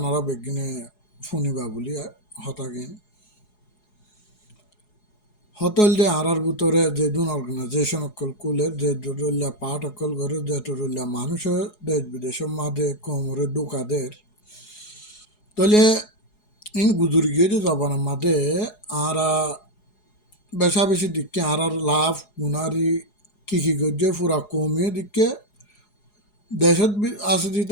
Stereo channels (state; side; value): late; right; 4.8 ms